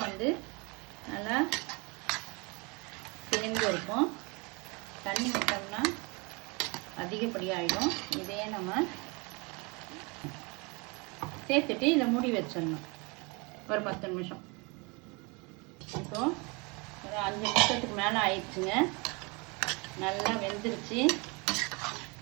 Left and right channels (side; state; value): left; quieter; 29.0 dB